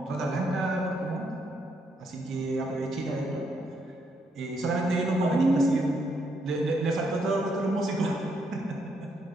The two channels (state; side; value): normal; both; correlation 0.76